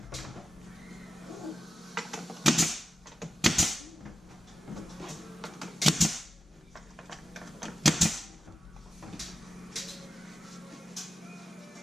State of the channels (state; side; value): normal; both; correlation 0.91